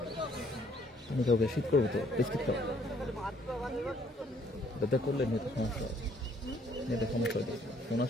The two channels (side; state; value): both; normal; correlation 0.64